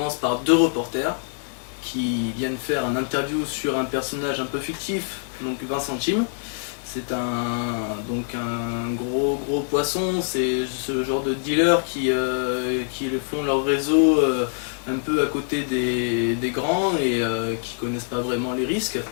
par deux reporters qui viennent faire un interview sur un personnage un peu fictif, donc Vincent Chim. C'est un gros poisson, c'est ce genre de dealers qui font leur réseau un peu à côté des grands et qui connaissent pas vraiment les risques.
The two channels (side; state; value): right; silent; digital silence